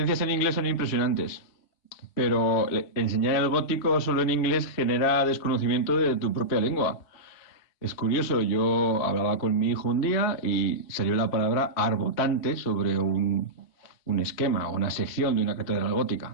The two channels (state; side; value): late; right; 3.1 ms